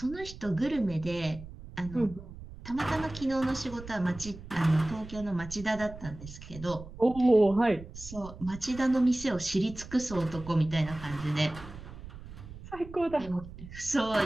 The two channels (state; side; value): noise; right; rumble, 14 dB below the sound